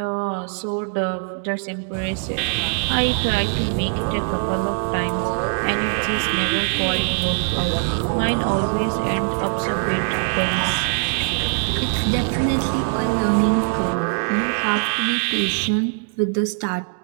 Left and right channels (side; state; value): left; silent; digital silence